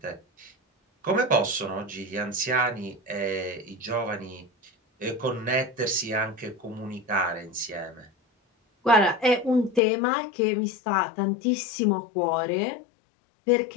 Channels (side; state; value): right; drops out; at 9.8 s